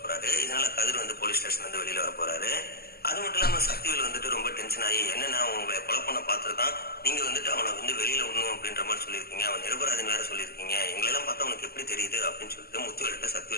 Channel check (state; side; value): late; right; 0.45 ms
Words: இதனால கதிர் வந்து போலீஸ் ஸ்டேஷன் வந்து வெளியில வர போறாரு. அது மட்டும் இல்லாம சக்திவேல் வந்துட்டு ரொம்ப டென்ஷன் ஆகி, என்னன்னா உங்களை கொலை பண்ண பார்த்துருக்கான், நீங்க வந்துட்டு அவனை வந்து வெளியில விடணும் அப்படின்ற மாதிரி சொல்லியிருக்கீங்க, அவன் நிரபராதின்னு வேற சொல்லியிருக்கீங்க, எங்களெல்லாம் பார்த்தா உனக்கு எப்படி தெரியுது அப்படின்னு சொல்லிட்டு முத்துவேல்கிட்ட